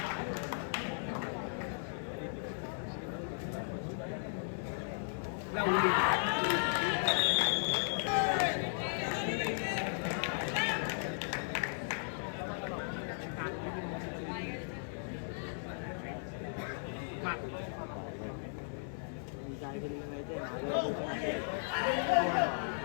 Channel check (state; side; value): silent; right; 54 dB below the other